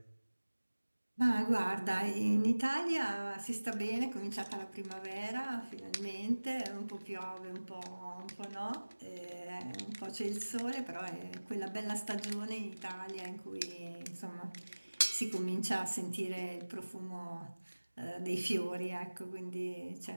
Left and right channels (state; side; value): inverted; both; correlation -1.00